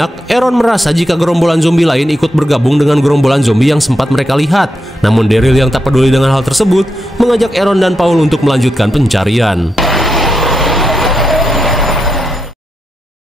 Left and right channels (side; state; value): both; normal; correlation 0.85